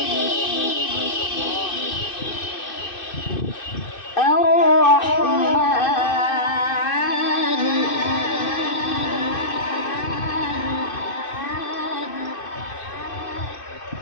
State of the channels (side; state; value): right; late; 2.6 ms